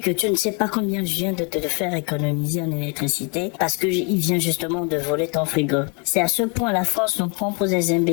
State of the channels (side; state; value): right; quieter; 34.7 dB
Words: tu ne sais pas combien je viens de te faire économiser en électricité parce que il vient justement de voler ton frigo. C'est à ce point la France nous prend pour des